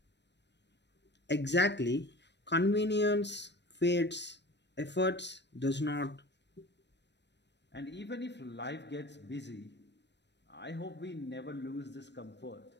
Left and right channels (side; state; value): right; late; 0.50 ms